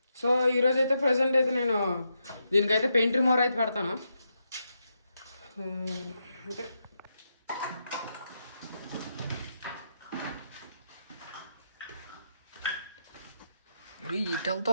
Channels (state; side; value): inverted; both; correlation -0.83